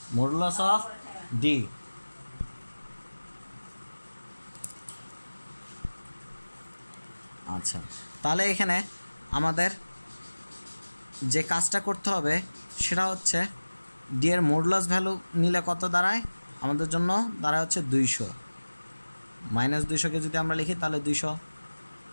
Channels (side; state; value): both; inverted; correlation -1.00